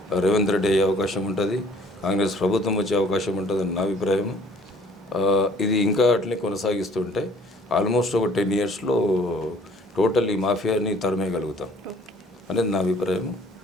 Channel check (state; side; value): normal; both; correlation 0.56